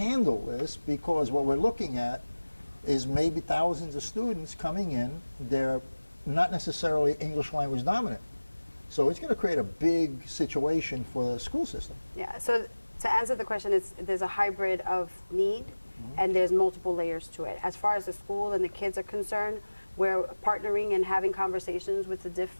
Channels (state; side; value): inverted; both; correlation -1.00